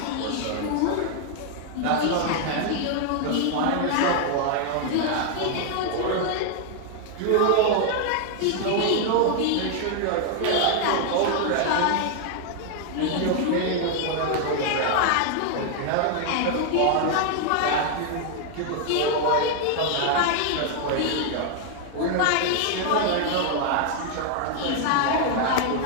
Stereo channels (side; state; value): both; different; correlation 0.00